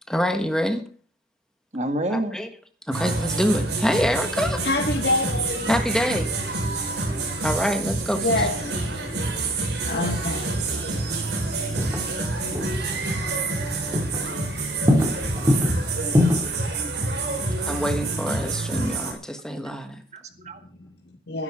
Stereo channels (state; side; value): normal; both; correlation 0.60